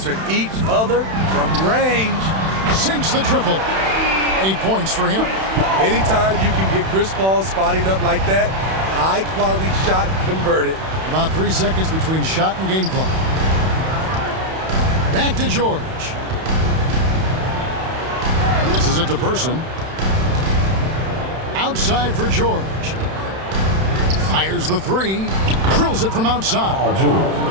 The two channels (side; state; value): left; late; 31 ms